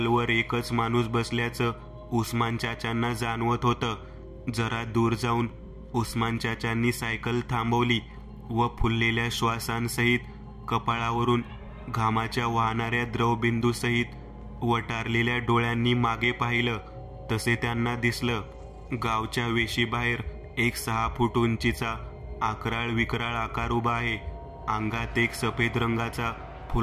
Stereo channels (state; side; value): identical; both; correlation 1.00